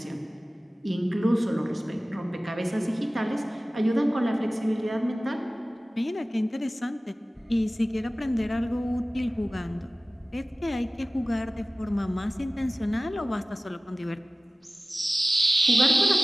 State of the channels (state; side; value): normal; both; correlation 0.97